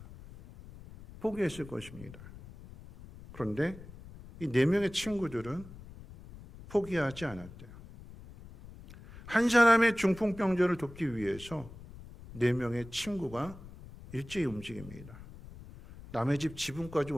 포기했을 것입니다. 그런데 이 4명의 친구들은 포기하지 않았대요. 한 사람의 중풍병자를 돕기 위해서 4명의 친구가 일제히 움직입니다. 남의 집 지붕까지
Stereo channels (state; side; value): noise; left; rumble, 17 dB below the sound